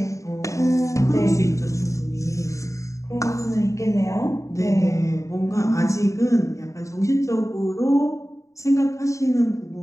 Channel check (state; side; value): late; right; 0.15 ms